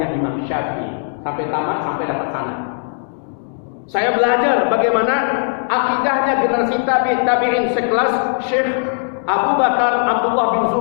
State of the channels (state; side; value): silent; right; digital silence